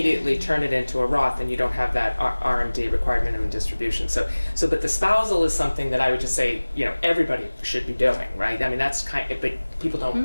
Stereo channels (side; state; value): both; inverted; correlation -1.00